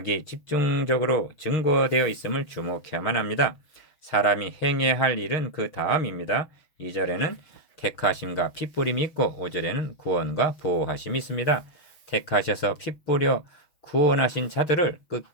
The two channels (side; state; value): right; late; 6.3 ms